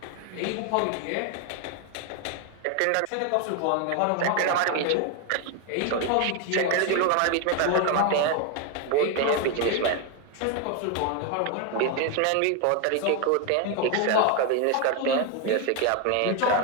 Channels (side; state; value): both; different; correlation 0.01